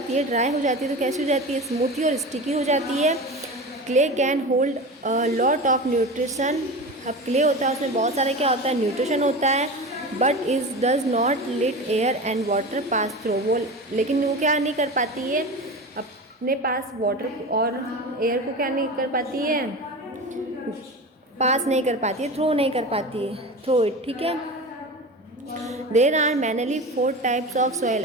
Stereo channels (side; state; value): both; normal; correlation 0.29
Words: है, ड्राई हो जाती है, तो कैसी हो जाती है, स्मूथी और स्टिकी हो जाती है। Clay can hold lot of nutrition. अब क्ले होता है उसमें बहुत सारे क्या होता है, न्यूट्रिशन होता है। But is does not let air and water pass through. वो लेकिन वो क्या नहीं कर पाती है, अपने पास वाटर और एयर को क्या नहीं कर पाती है, पास नहीं कर पाती है, थ्रो नहीं कर पाती है, थ्रो इट। ठीक है, there are mainly 4 types of soil.